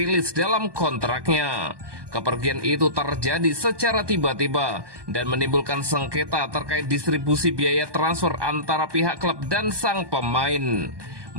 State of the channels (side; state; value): left; late; 1.2 ms